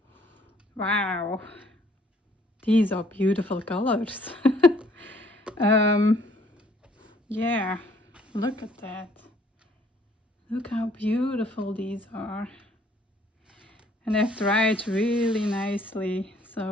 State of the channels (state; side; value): normal; both; correlation 0.61